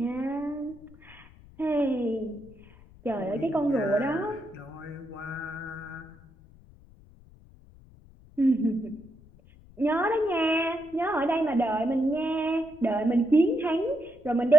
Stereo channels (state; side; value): noise; left; rumble, 24 dB below the sound